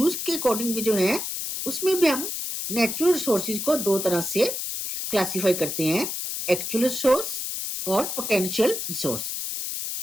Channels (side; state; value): left; noise; hiss, 4 dB below the sound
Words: के अकॉर्डिंग भी जो है उसमें भी हम नेचुरल रिसोर्सेज को दो तरह से क्लासिफाई करते हैं, एक्चुअल रिसोर्स और पोटेंशियल रिसोर्स।